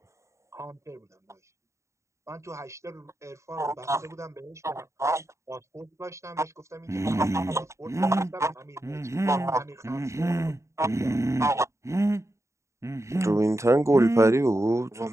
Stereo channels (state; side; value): late; left; 0.14 ms